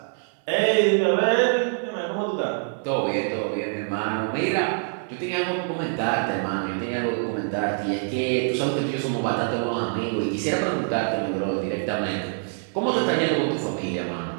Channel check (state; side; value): silent; left; digital silence